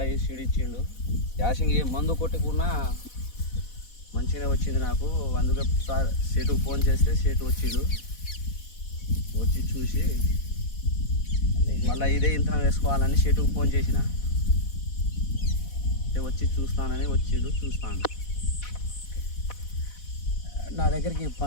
సీడు ఇచ్చిండు. యాసింగ్ ఏ మందు కొట్టుకున్నా మంచిగా వచ్చింది నాకు. అందుకే సార్ సేటుకు ఫోన్ చేస్తే సేటు వచ్చిండు. వచ్చి చూసి మళ్ళీ ఇదే ఇంతనం వేసుకోవాలని సేటుకు ఫోన్ చేసిన. వచ్చి చూస్తానని వచ్చిండు. చూస్తాను. నా దగ్గరికి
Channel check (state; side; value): late; right; 4.1 ms